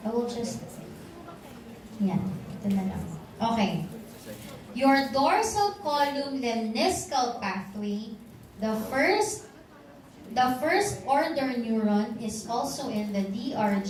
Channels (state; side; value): identical; both; correlation 1.00